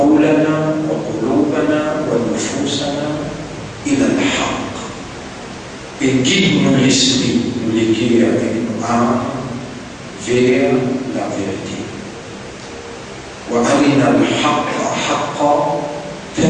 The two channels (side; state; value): both; identical; correlation 1.00